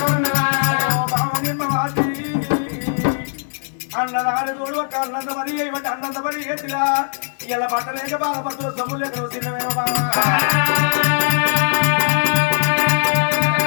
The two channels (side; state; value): right; silent; digital silence